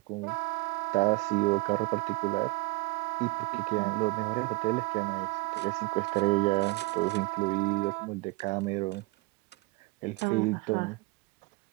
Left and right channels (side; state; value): left; quieter; 25.0 dB